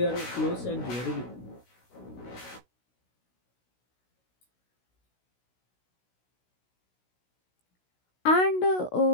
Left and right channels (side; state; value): right; late; 16 ms